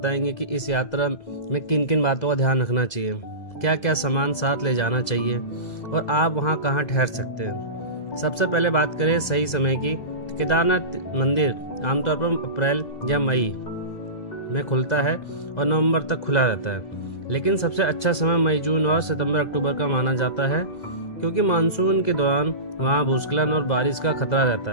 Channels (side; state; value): right; late; 2.0 ms